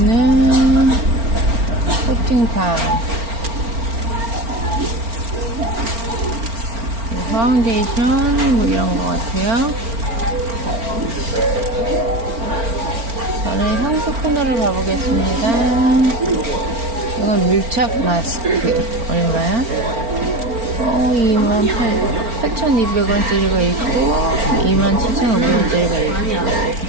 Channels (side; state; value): left; late; 4.4 ms